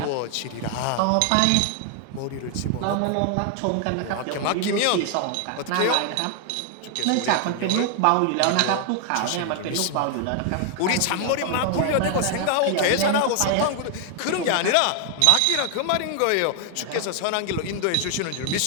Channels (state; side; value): different; both; correlation 0.00